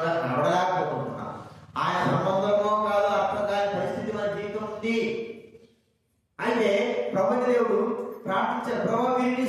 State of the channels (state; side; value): identical; both; correlation 1.00